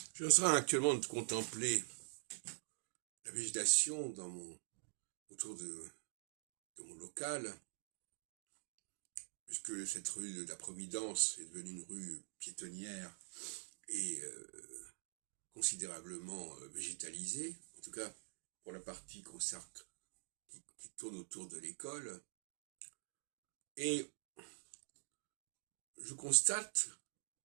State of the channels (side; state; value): left; silent; digital silence